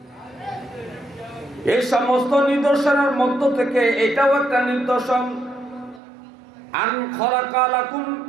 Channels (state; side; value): drops out; left; at 6.0 s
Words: এই সমস্ত নিদর্শনের মধ্য থেকে এটাও একটা নিদর্শন। আন খালাকা লাকুম